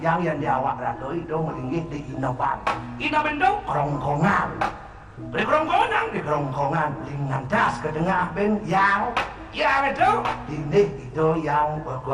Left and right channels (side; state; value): both; identical; correlation 1.00